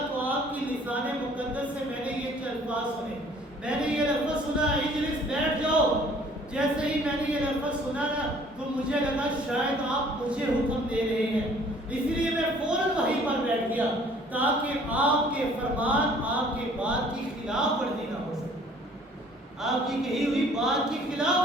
تو آپ کی لسان مقدس سے میں نے یہ الفاظ سنے، میں نے یہ لفظ سنا اجلس، بیٹھ جاؤ۔ جیسے ہی میں نے یہ لفظ سنا نا تو مجھے لگا شاید آپ مجھے حکم دے رہے ہیں، اس لیے میں فوراً وہیں پر بیٹھ گیا تاکہ آپ کے فرمان، آپ کے بات کی خلاف ورزی نہ ہو سکے، آپ کی کہی ہوئی بات کی خلاف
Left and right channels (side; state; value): both; normal; correlation 0.55